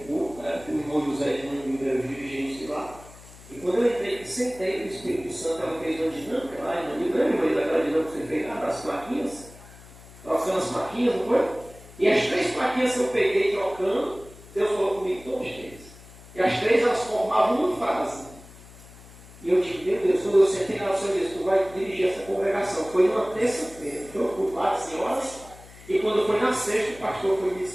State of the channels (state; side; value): noise; left; hum, 20 dB below the sound